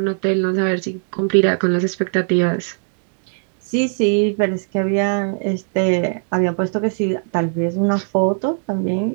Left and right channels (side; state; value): left; silent; digital silence